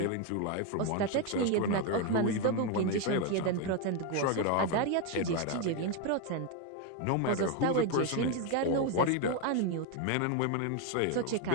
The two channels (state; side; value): different; both; correlation 0.02